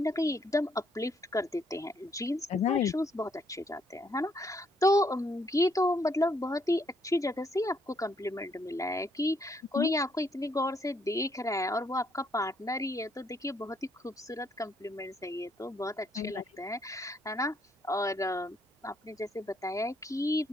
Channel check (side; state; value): both; normal; correlation 0.71